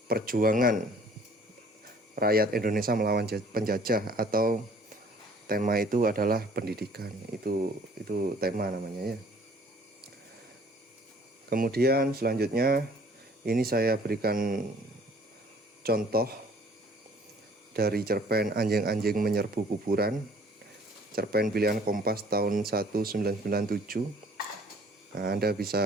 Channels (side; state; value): both; normal; correlation 0.56